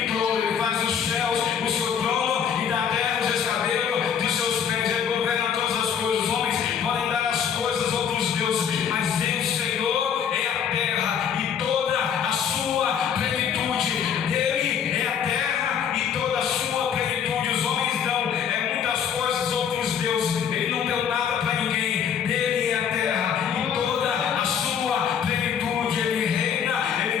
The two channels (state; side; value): quieter; right; 7.9 dB